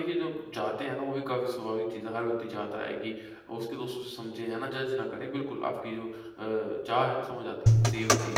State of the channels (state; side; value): identical; both; correlation 1.00